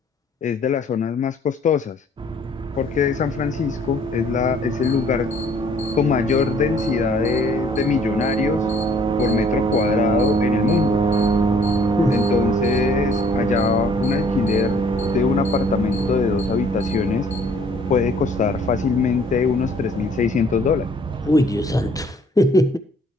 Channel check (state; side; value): normal; both; correlation 0.59